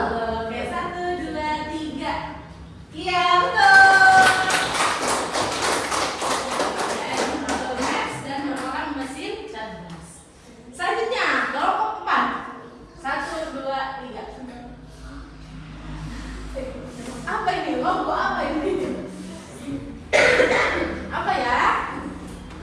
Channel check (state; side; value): identical; both; correlation 1.00